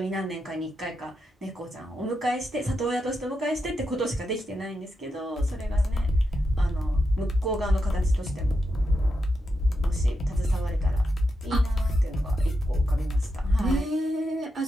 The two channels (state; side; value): normal; both; correlation 0.86